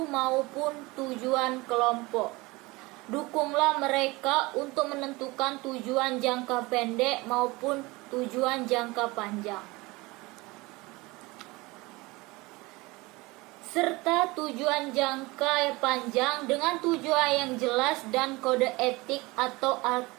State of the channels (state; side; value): quieter; left; 23.0 dB